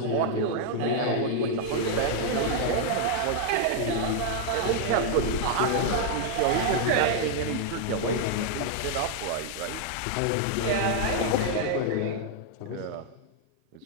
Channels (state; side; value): different; both; correlation -0.01